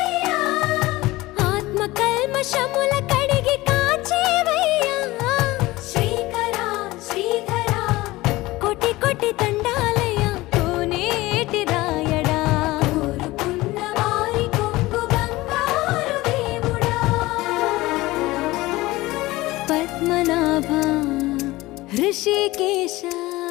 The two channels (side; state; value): right; quieter; 19.2 dB